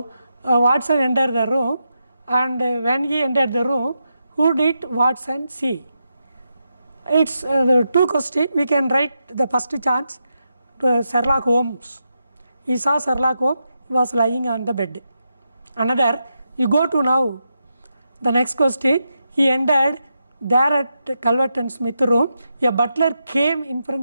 Watson entered the room, and when he entered the room, who did Watson see? It's the two questions. We can write the first chance to Sherlock Holmes. He saw Sherlock Holmes, he was lying on the bed. Another, you go to now the next question, he entered there at Calvert and Smith room, a butler came in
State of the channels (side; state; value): both; inverted; correlation -0.86